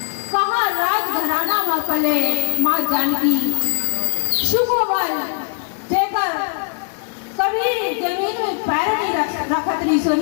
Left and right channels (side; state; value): right; silent; 62 dB below the other